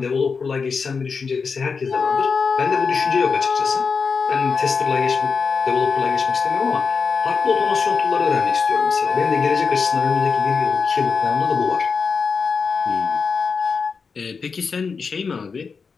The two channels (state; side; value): quieter; right; 5.2 dB